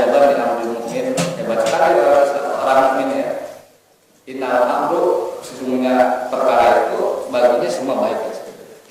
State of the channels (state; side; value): identical; both; correlation 1.00